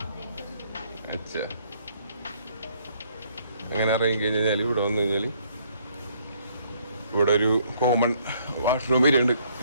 अच्छा. അങ്ങനെ ഇറങ്ങി കഴിഞ്ഞാൽ ഇവിടെ വന്നു കഴിഞ്ഞാൽ ഇവിടെ ഒരു കോമൺ വാഷ്റൂം വരുന്നുണ്ട്,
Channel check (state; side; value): inverted; both; correlation -0.66